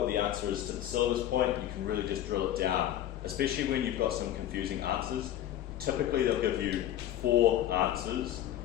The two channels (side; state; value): right; quieter; 12.1 dB